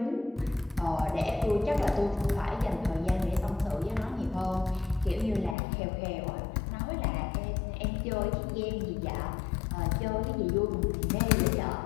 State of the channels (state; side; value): drops out; right; at 5.6 s